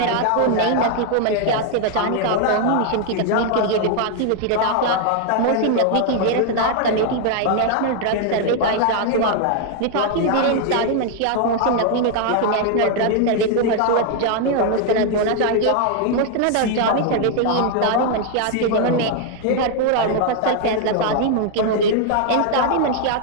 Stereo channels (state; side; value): different; both; correlation 0.00